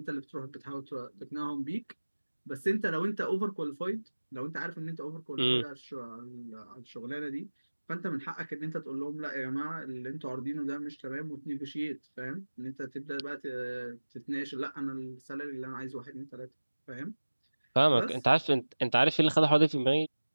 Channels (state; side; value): inverted; both; correlation -1.00